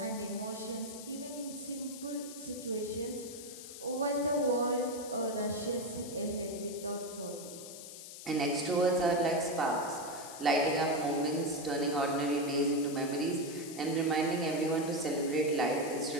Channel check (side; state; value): left; noise; hiss, 12 dB below the sound